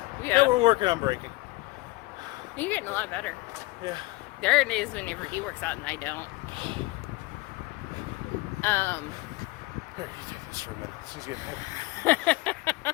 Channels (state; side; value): quieter; right; 21.9 dB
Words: we're working on breaking. You're getting a lot better. Yeah. There are days whenever he works out and I don't. Here, you take this for a minute. She's getting heavy.